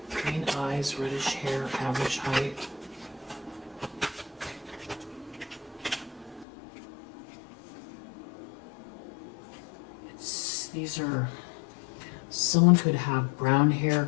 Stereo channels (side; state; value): right; drops out; at 6.5 s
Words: Green eyes, reddish hair, average height. These are, someone could have brown hair,